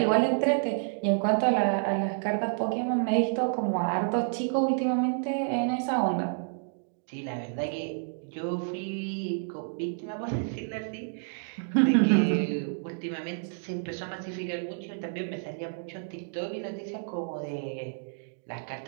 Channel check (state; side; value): silent; left; digital silence